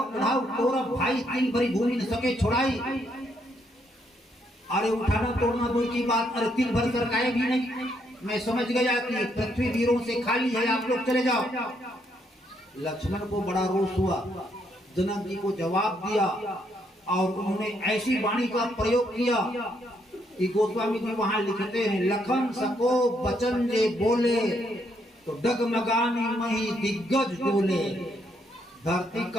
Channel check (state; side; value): normal; both; correlation 0.74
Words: पढ़ाओ तोरा भाई तिल भरी भूमि न सके छोड़ाई। अरे उठाना तोड़ना दूर की बात, अरे तिल भर सरकाए भी नहीं। मैं समझ गया कि पृथ्वी वीरों से खाली है, आप लोग चले जाओ। लक्ष्मण को बड़ा रोष हुआ, जनक जी को जवाब दिया और उन्होंने ऐसी वाणी का प्रयोग किया कि गोस्वामी जी वहां लिखते हैं, लखन सको बचन जे बोले तो डगमगानी मही दिग्गज डोले। धरती